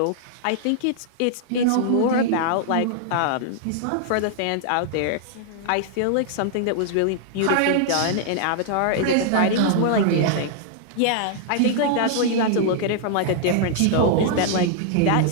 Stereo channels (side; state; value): both; different; correlation -0.01